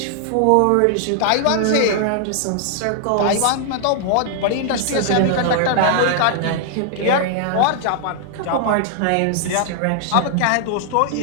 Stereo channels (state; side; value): different; both; correlation 0.00